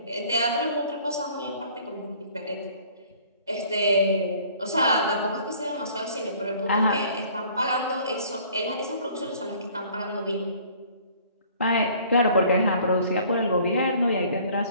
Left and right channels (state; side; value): inverted; both; correlation -0.54